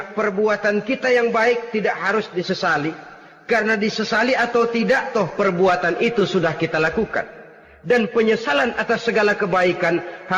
perbuatan kita yang baik tidak harus disesali. Karena disesali atau tidak, toh perbuatan itu sudah kita lakukan. Dan penyesalan atas segala kebaikan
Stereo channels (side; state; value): both; identical; correlation 1.00